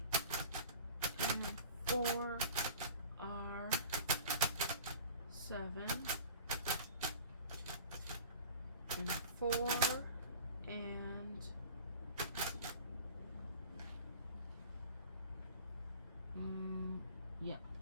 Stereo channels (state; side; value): inverted; both; correlation -0.40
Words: and 4 are 7. And 4 and yeah.